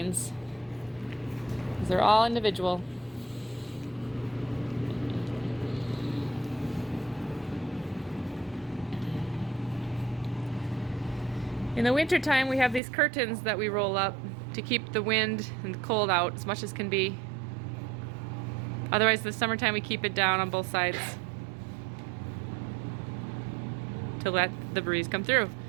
They're all individual. In the wintertime, we have these curtains that we roll up to keep the wind and the cold out as much as can be. Otherwise, the summertime, we keep it down on both sides to let the breeze come through.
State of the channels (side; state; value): left; drops out; at 12.8 s